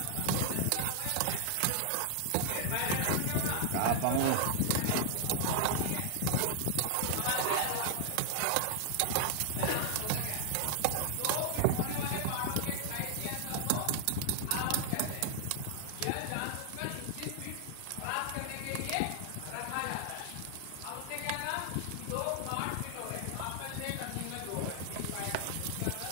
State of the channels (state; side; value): different; both; correlation 0.00